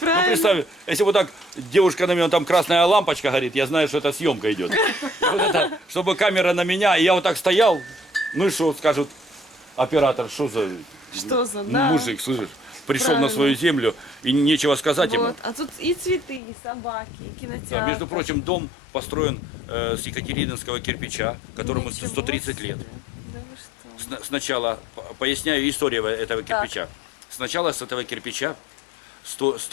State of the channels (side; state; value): right; drops out; at 16.4 s